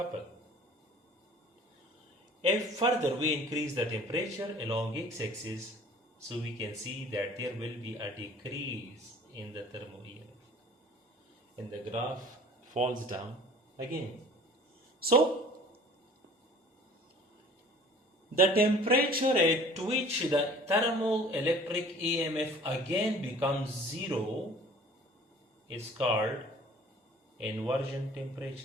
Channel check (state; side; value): normal; both; correlation 0.48